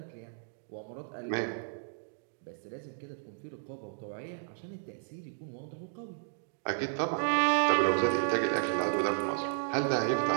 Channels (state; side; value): silent; left; digital silence